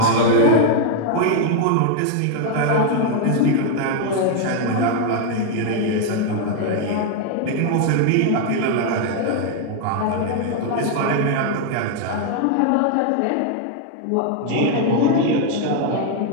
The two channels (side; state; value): both; different; correlation 0.00